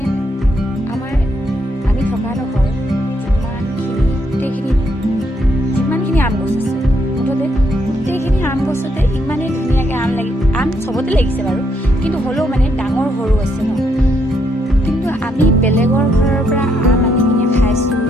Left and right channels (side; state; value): both; normal; correlation 0.75